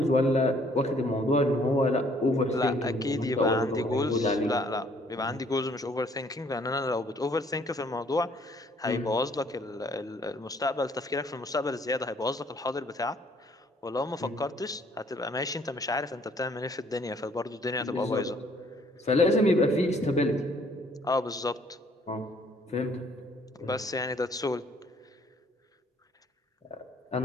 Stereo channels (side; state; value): both; normal; correlation 0.62